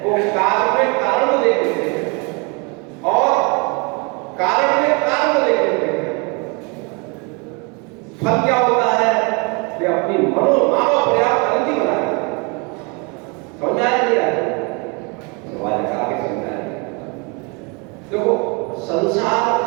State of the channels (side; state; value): left; quieter; 31.7 dB